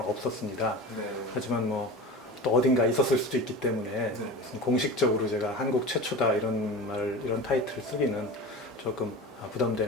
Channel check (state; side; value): normal; both; correlation 0.32